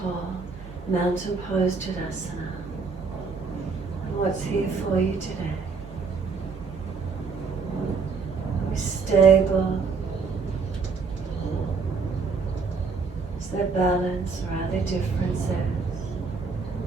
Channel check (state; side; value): quieter; left; 4.8 dB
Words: mountain pose Tadasana. And what's here for you today? stable? Is there balance or are there differences?